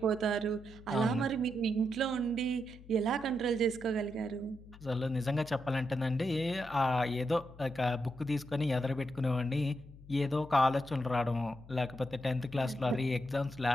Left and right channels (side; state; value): left; noise; hum, 19 dB below the sound